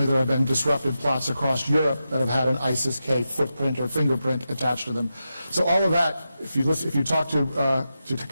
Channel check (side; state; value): both; inverted; correlation -0.90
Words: there have been disrupted plots across Europe that have had an ISIS-K footprint or fingerprint attached to them. So all of that, if you talk to